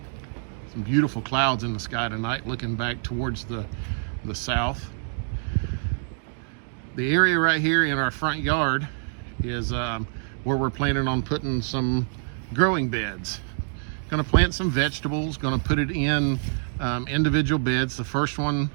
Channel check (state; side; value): silent; left; 61 dB below the other